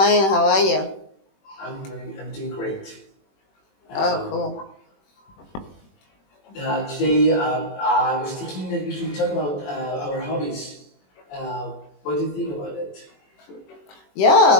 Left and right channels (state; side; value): late; right; 21 ms